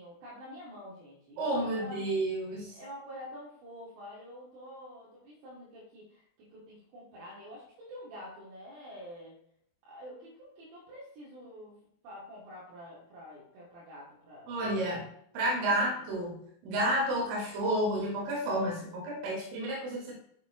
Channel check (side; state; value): left; late; 24 ms